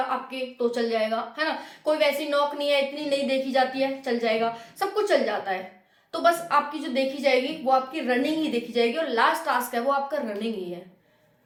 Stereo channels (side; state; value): both; identical; correlation 1.00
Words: तो चल जाएगा, है ना, कोई वैसी नौक नहीं है, इतनी नहीं देखी जाती है, चल जाएगा, सब कुछ चल जाता है। तो बस आपकी जो देखी जाएगी वो आपकी रनिंग ही देखी जाएगी, और लास्ट टास्क है वो आपका रनिंग ही है,